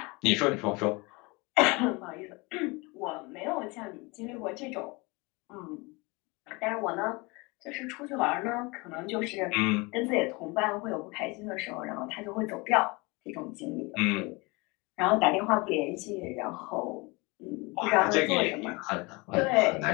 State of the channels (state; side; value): quieter; right; 26.2 dB